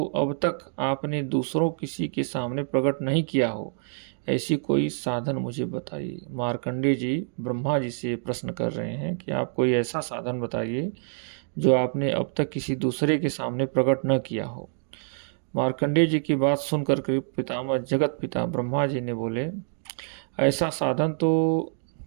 अब तक आपने दूसरों किसी के सामने प्रकट नहीं किया हो, ऐसी कोई साधन मुझे बताइए। मार्कंडेय जी ब्रह्मा जी से प्रश्न कर रहे हैं कि आप कोई ऐसा साधन बताइए जो आपने अब तक किसी दूसरे के सामने प्रकट न किया हो। मार्कंडेय जी की बात सुनकर के पितामह जगत पिता ब्रह्मा जी ने बोले, ऐसा साधन तो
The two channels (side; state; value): left; silent; digital silence